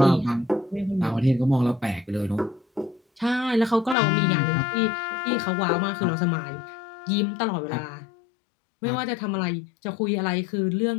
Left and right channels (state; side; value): drops out; right; at 4.0 s